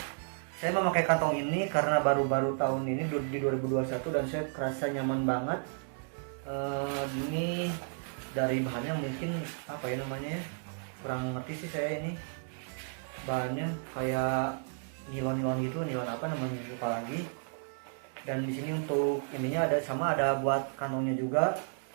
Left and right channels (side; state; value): left; silent; 56 dB below the other